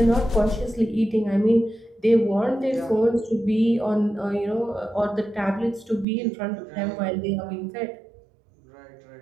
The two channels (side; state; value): left; drops out; at 6.1 s